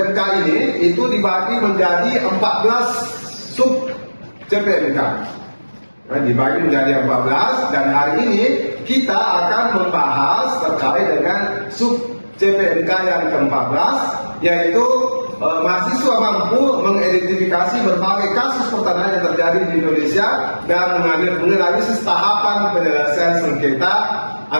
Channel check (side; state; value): both; inverted; correlation -1.00